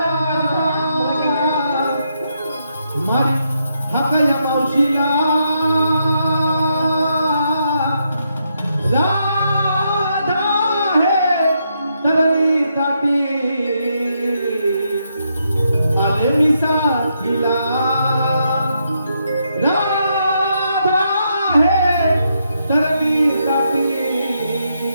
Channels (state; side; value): inverted; both; correlation -0.79